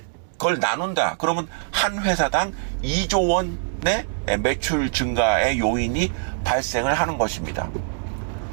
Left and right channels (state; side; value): silent; left; digital silence